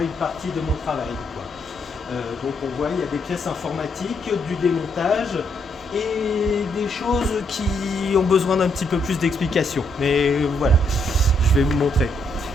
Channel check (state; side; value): normal; both; correlation 0.75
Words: une partie de mon travail, quoi. Donc on voit, il y a des pièces informatiques, du démontage et des choses qui ont besoin d'un petit peu plus d'explication. Mais voilà, je vais vous montrer.